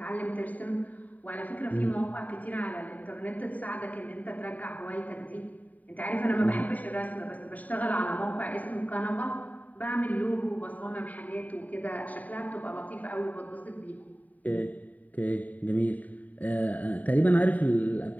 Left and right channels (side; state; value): right; late; 0.074 ms